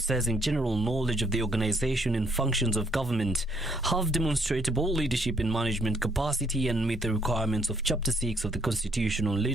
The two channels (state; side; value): normal; both; correlation 0.69